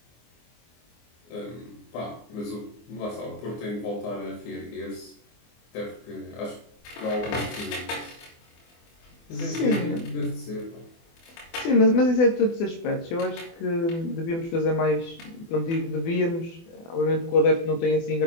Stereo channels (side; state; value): right; late; 24 ms